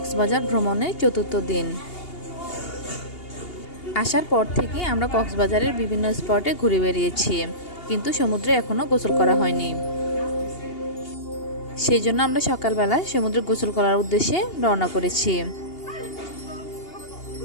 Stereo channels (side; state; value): right; late; 2.8 ms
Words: ভ্রমণের চতুর্থ দিন। আসার পর থেকে আমরা কক্সবাজারের বিভিন্ন স্পটে ঘুরে বেরিয়েছি, কিন্তু সমুদ্রে এখনও গোসল করা হয়নি। সেই জন্য আমরা সকালবেলা সমুদ্রে গোসল করার উদ্দেশ্যে রওনা করেছি।